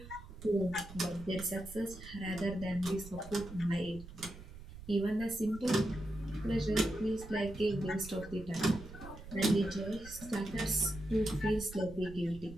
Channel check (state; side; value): noise; right; rumble, 14 dB below the sound